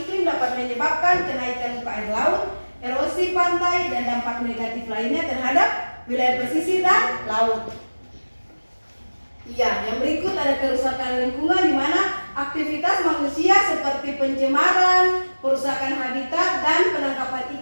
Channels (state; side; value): inverted; both; correlation -1.00